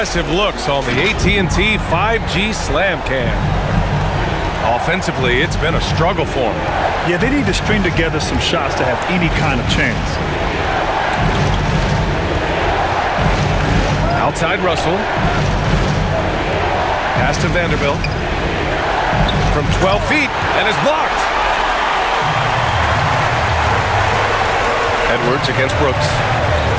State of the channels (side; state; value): both; identical; correlation 1.00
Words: looks on the AT&T 5G Slam Cam. Offensively, it's been a struggle for him. Yeah, they need to string together some shots to have any kind of chance. Outside Russell. Pass to Vanderbilt. From 12 feet, and is blocked. Edwards against Brooks.